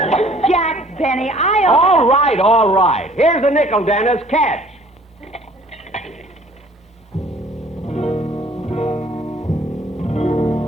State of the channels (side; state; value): both; normal; correlation 0.55